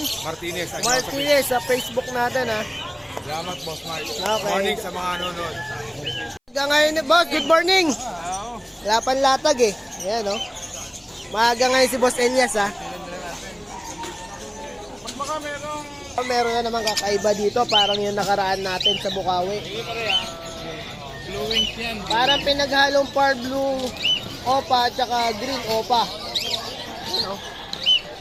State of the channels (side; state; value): both; identical; correlation 1.00